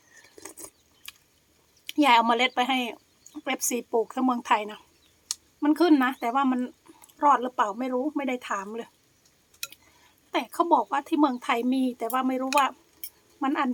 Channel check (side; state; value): both; identical; correlation 1.00